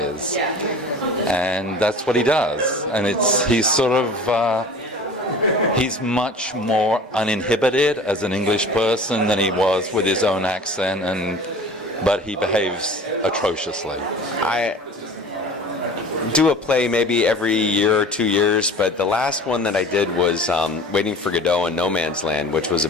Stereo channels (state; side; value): normal; both; correlation 0.41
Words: And that's what he does. And he's much more uninhibited as an English person than he was with his own accent, but he behaves atrociously. I do a play maybe every year or 2 years, but the last one that I did was Waiting for Godot in No Man's Land, which was